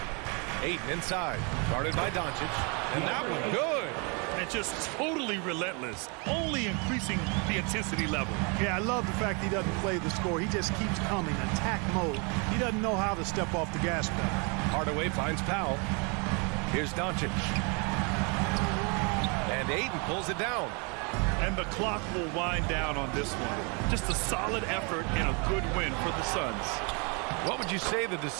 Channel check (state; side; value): quieter; left; 33.1 dB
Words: Ayton inside. Guarded by Doncic. And that one good. And just totally relentless, only increasing the intensity level. Yeah, I love the fact he doesn't play the score. He just keeps coming, attack mode. He doesn't know how to step off the gas pedal. Hardaway finds Powell. Here's Doncic. And Ayton pulls it down. And the clock will wind down on this one. Just a solid effort and a good win for the Suns. What would you say the